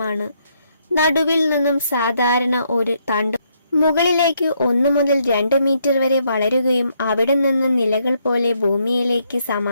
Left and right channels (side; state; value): both; inverted; correlation -0.74